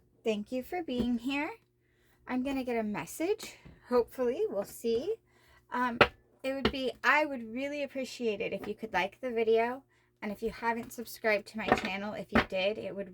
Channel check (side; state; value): both; identical; correlation 1.00